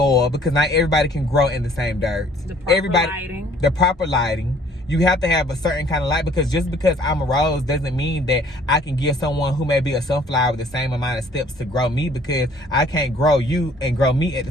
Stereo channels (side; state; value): both; normal; correlation 0.57